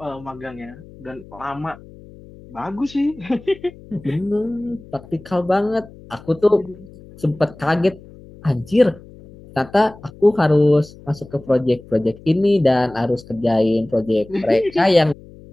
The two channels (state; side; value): noise; left; hum, 20 dB below the sound